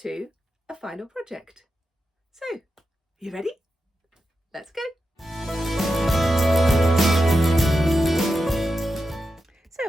a final project. So, you ready? Let's go.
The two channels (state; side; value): normal; both; correlation 0.89